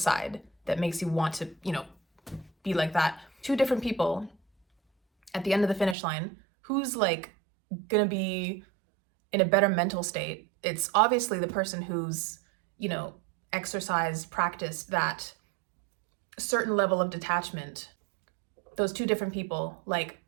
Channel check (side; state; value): left; drops out; at 6.0 s